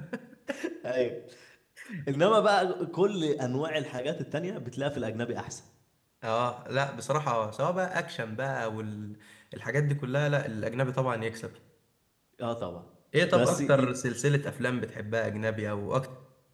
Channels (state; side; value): identical; both; correlation 1.00